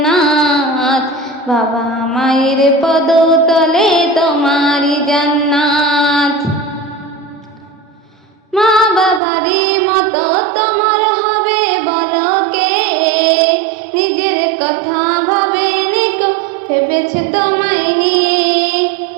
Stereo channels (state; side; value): drops out; left; at 9.2 s